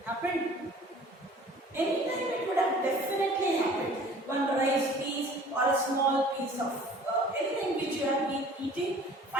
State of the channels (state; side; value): normal; both; correlation 0.49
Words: Happened? Anytime it would have definitely happened. One rice piece or a small piece of anything which you have been eating,